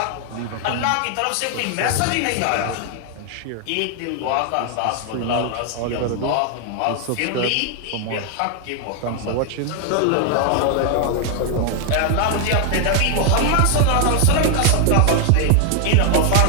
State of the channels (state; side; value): different; both; correlation 0.00